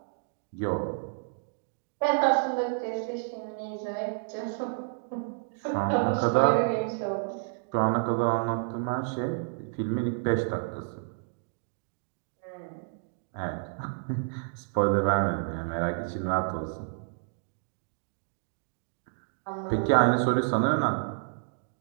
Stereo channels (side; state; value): left; silent; digital silence